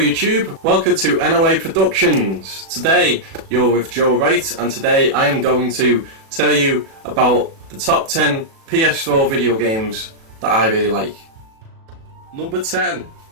welcome to NOA Productions. Today you're with Joe Wright, and today I am going to tell you about the top 10 PS4 video games that I really like. Number 10,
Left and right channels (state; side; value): late; left; 37 ms